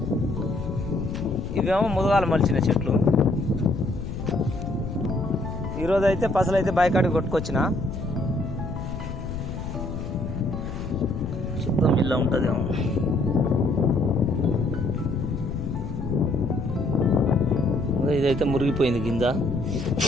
ఇవేమో ముదగాలు మలిచిన చెట్లు. ఈరోజు అయితే పసలు అయితే బైకాడికి కొట్టుకొచ్చిన. శుద్ధం ఇలా ఉంటుందేమో. ఇదైతే మురిగిపోయింది కింద.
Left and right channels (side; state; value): left; noise; rumble, 7 dB below the sound